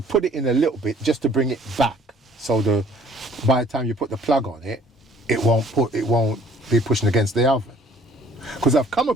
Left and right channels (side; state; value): both; normal; correlation 0.57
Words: put it in a little bit just to bring it back, so by the time you put the plug on it, it won't be pushing against the oven. Because I've come